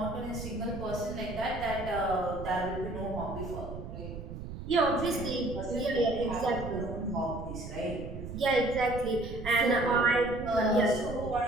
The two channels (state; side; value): noise; right; rumble, 9 dB below the sound